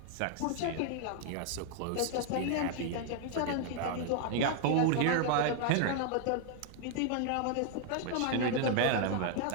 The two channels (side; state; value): both; different; correlation 0.00